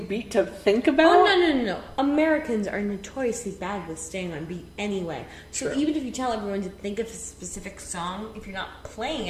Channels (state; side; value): identical; both; correlation 1.00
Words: beat to think about? Oh, no. Americans are notoriously bad with staying on beat anyway. So True. even if you tell everyone to think of a specific song, if you're not playing